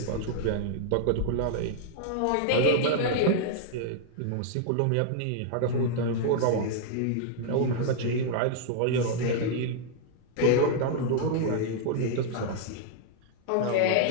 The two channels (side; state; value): both; different; correlation -0.01